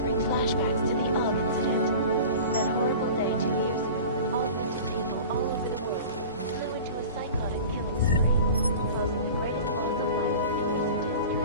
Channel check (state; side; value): inverted; both; correlation -0.37